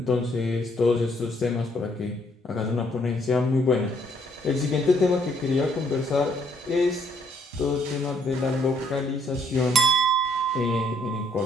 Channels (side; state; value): both; normal; correlation 0.68